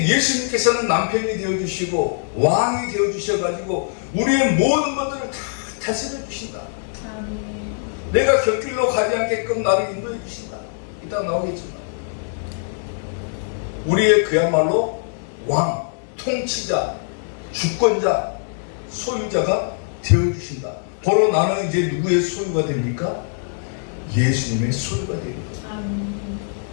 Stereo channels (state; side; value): silent; right; digital silence